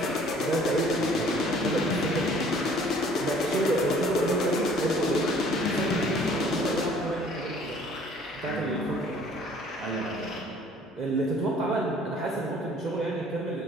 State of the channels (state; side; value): normal; both; correlation 0.55